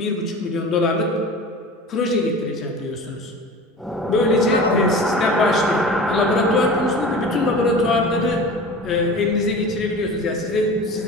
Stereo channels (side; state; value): both; normal; correlation 0.36